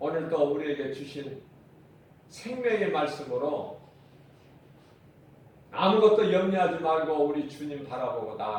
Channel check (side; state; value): both; identical; correlation 1.00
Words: 우리에게 주신 생명의 말씀으로 아무것도 염려하지 말고 우리 주님 바라보고